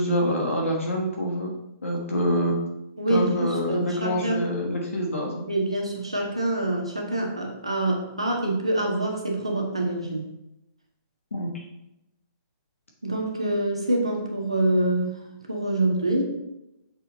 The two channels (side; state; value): both; inverted; correlation -0.66